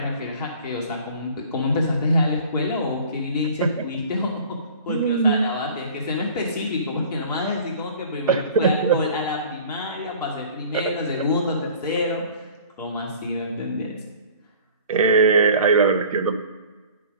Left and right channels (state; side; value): inverted; both; correlation -0.46